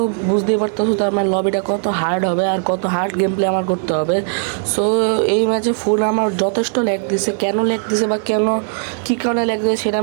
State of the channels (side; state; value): left; silent; digital silence